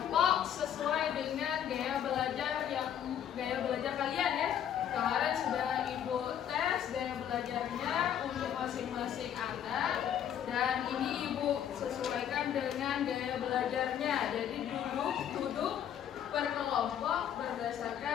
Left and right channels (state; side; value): quieter; right; 9.6 dB